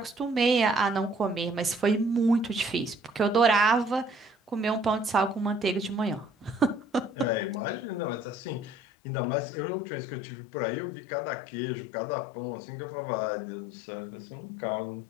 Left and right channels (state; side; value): drops out; right; at 8.8 s